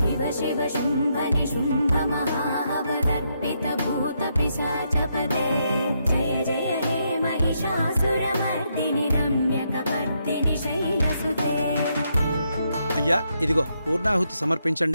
శివ శుంభ నిశుంభ మహావదర్పిత భూత పిశాచపదే జయ జయ హే మహిషాసురమర్దిని రమ్యకపర్దిని శైలసుతే. అయ్యా, ఇదిగో పూర్ణాహుతి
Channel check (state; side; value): inverted; both; correlation -0.78